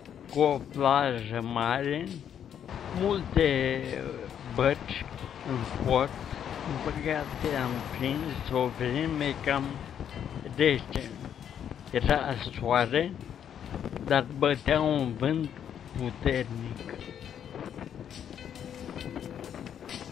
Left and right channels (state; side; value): quieter; right; 9.0 dB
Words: cu o plajă mare, multe bărci în port. În păcate am prins o vreme cam rece. Era soare, dar bătea un vânt puternic.